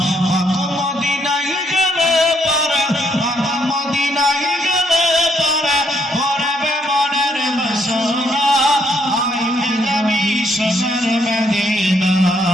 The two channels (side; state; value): both; normal; correlation 0.72